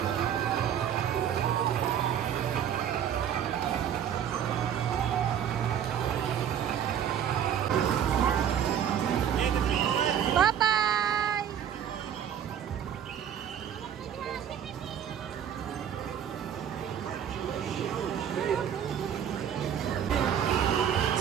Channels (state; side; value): quieter; left; 9.1 dB